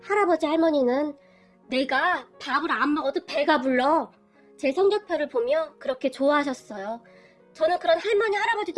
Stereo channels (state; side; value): identical; both; correlation 1.00